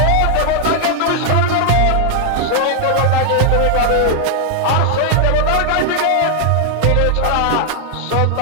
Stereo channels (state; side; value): different; both; correlation 0.00